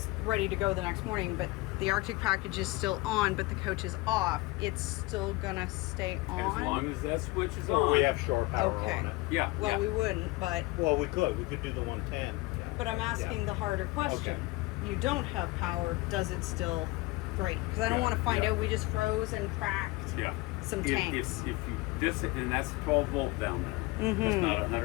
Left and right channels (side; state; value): right; quieter; 21.8 dB